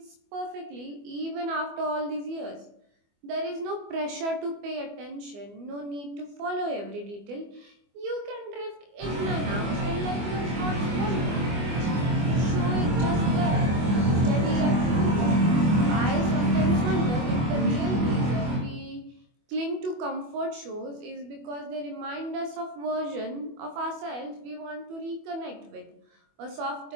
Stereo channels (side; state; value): left; late; 24 ms